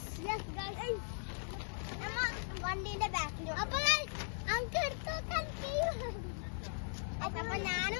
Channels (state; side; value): silent; right; digital silence